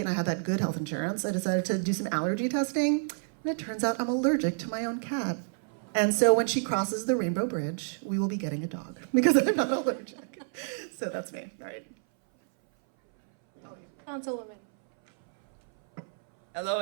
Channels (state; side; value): silent; left; 58 dB below the other